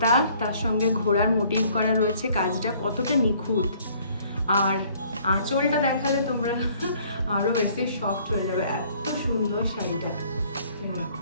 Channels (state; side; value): inverted; both; correlation -0.59